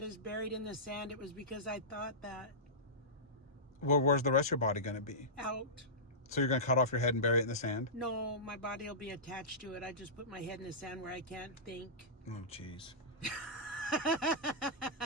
is buried in the sand, it was because I thought that well, where's the rest of your body going to be? out. So you're going to cut off your head and bury it in the sand? No, my body will be attached to it. I just put my head in the sand where I can't think. Oh, jeez.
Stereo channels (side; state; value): both; normal; correlation -0.18